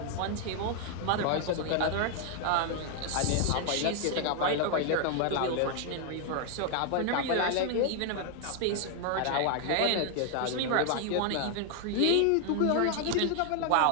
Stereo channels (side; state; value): both; different; correlation 0.00